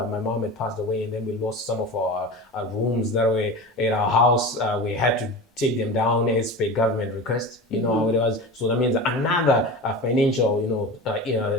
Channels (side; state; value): both; normal; correlation 0.30